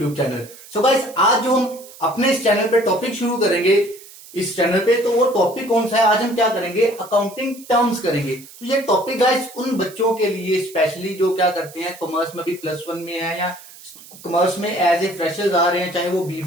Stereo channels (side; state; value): right; noise; hiss, 19 dB below the sound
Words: channel. So guys, आज जो हम अपने इस चैनल पे टॉपिक शुरू करेंगे इस चैनल पे, तो वो टॉपिक कौन सा है? आज हम क्या करेंगे? अकाउंटिंग टर्म्स करेंगे। तो ये टॉपिक गाइस उन बच्चों के लिए स्पेशली जो क्या करते हैं, कॉमर्स में भी +1 में है या कॉमर्स में एज ए फ्रेशर्स आ रहे हैं, चाहे वो